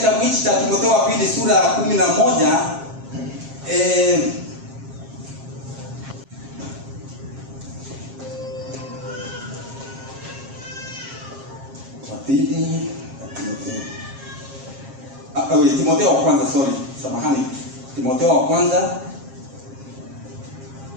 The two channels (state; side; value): late; left; 7.5 ms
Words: hichi cha Timotheo wa pili sura ya 11 Timotheo wa kwanza, Timotheo wa kwanza